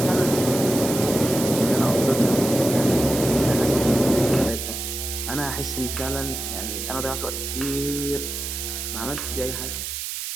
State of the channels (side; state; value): right; noise; hiss, 5 dB below the sound